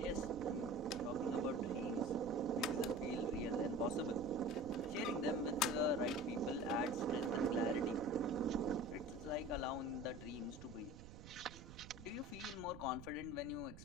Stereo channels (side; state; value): right; noise; rumble, 14 dB below the sound